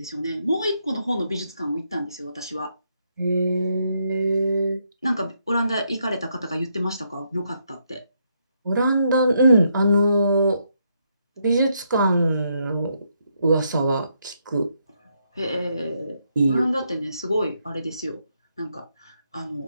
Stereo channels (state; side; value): inverted; both; correlation -0.77